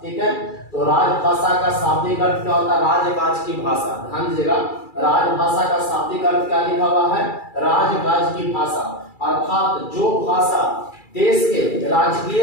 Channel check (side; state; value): right; late; 2.3 ms